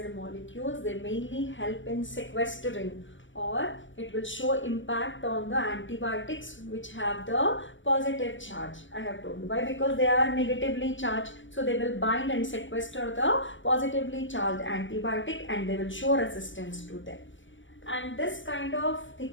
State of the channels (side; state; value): right; late; 0.56 ms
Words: molecules. They mainly help in sequestering, or it will show impact on the antibiotics which have the positive charge. I have told you why, because they are negatively charged, so they will bind and sequester the positively charged antibiotic and they will show resistance to them. And this kind of